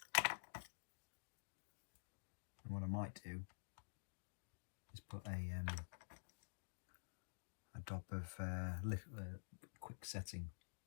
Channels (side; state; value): right; silent; digital silence